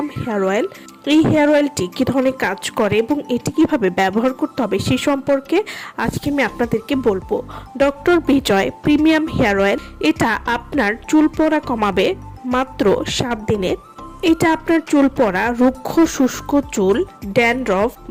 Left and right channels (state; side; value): identical; both; correlation 1.00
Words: হেয়ার অয়েল। এই হেয়ার অয়েলটি কী ধরনের কাজ করে এবং এটি কিভাবে ব্যবহার করতে হবে সে সম্পর্কে আজকে আমি আপনাদেরকে বলবো। ডক্টর বিজয় প্রিমিয়াম হেয়ার অয়েল, এটা আপনার চুল পড়া কমাবে মাত্র 7 দিনে। এটা আপনার চুল পড়া, রুক্ষ শুষ্ক চুল, ড্যান্ড্রফ